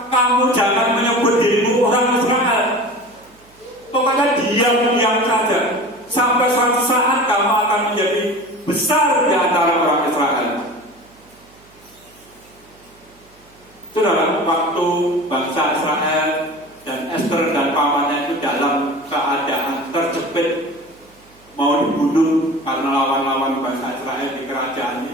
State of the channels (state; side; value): noise; right; hum, 29 dB below the sound